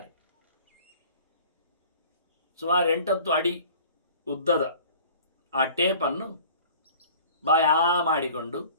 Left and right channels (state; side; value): inverted; both; correlation -0.46